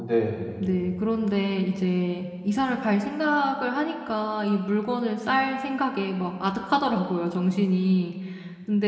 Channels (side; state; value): both; identical; correlation 1.00